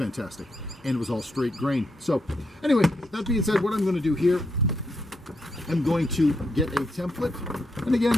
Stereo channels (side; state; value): both; normal; correlation 0.81